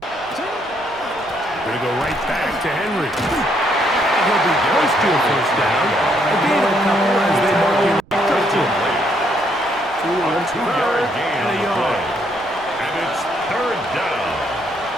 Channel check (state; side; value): noise; right; rumble, 24 dB below the sound